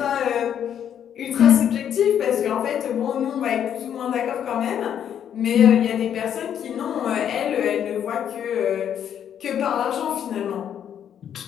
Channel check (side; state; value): right; quieter; 9.3 dB